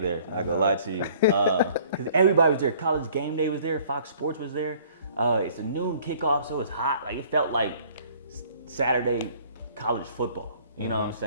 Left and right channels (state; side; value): inverted; both; correlation -0.55